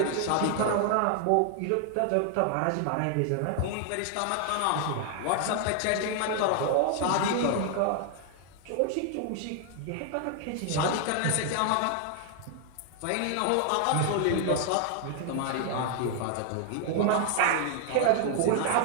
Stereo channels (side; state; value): both; different; correlation 0.00